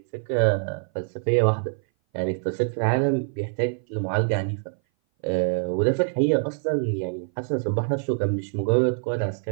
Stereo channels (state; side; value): silent; left; 58 dB below the other